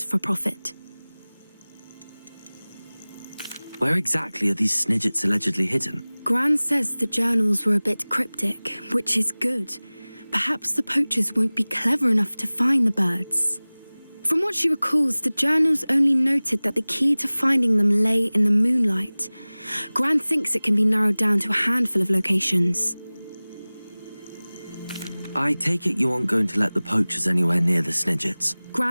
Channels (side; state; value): both; inverted; correlation -0.99